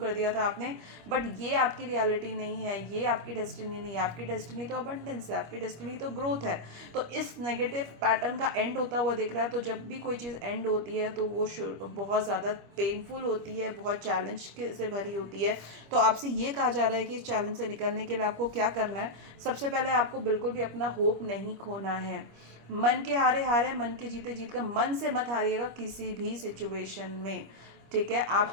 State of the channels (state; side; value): late; left; 25 ms